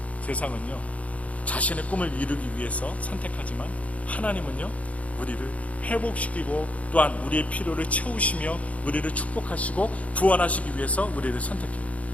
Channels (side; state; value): right; late; 0.067 ms